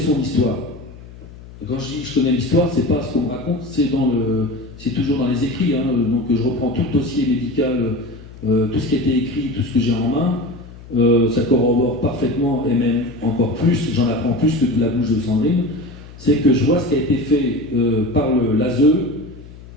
histoire. Quand je dis je connais l'histoire, c'est pas ce qu'on me raconte, c'est toujours dans les écrits. Hein, donc je reprends tout le dossier médical tout ce qui a été écrit, tout ce que j'ai en main, ça corrobore parfaitement, et même encore plus, j'en apprends plus que de la bouche de Sandrine, c'est que je vois ce qui a été fait par l'ASE,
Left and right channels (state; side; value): noise; left; hum, 18 dB below the sound